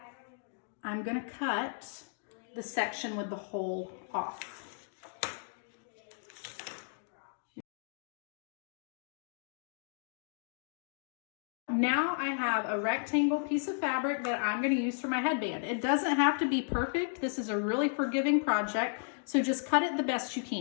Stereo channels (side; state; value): right; silent; digital silence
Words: I'm going to cut the section with the hole off. Now I have a rectangle piece of fabric that I'm going to use for my headband. It doesn't have to be perfect. This is a really forgiving project, so just cut it the best you